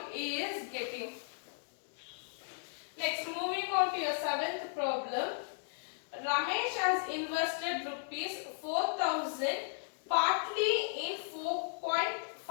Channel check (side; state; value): right; silent; digital silence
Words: he is getting. Next, moving on to your seventh problem. Ramesh has invested rupees 4,000 partly in